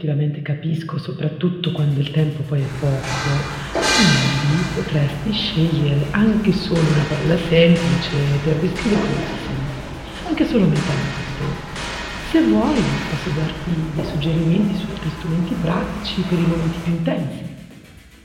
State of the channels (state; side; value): identical; both; correlation 1.00